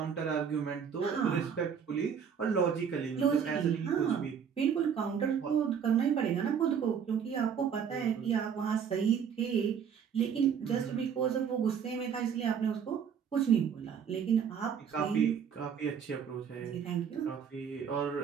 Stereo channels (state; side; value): quieter; left; 7.4 dB